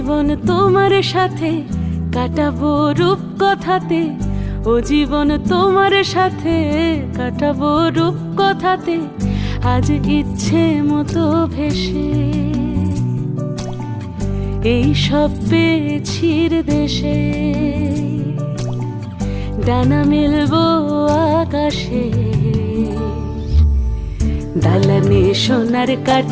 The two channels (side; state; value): both; identical; correlation 1.00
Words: তোমার সাথে কাটাবো রূপ কথাতে, ও জীবন তোমার সাথে কাটাবো রূপ কথাতে, আজ ইচ্ছে মতো ভেসে এই সব পেয়েছির দেশে। ডানা মেলবো আকাশে, দালানে সোনার